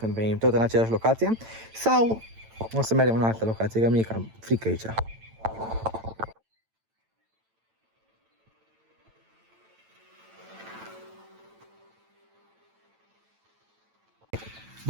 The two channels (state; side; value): late; left; 9.0 ms